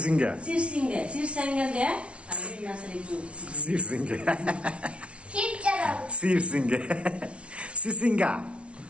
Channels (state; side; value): late; left; 0.060 ms